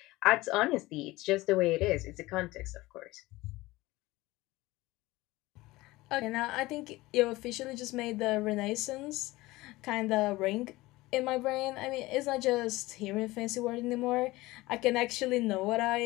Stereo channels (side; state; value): right; quieter; 19.6 dB